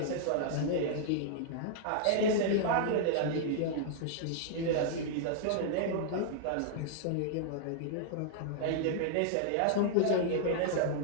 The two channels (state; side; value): different; both; correlation -0.01